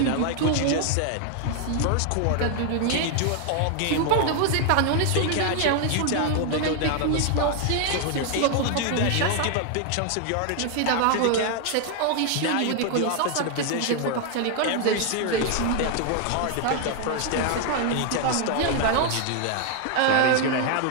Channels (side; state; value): both; different; correlation 0.00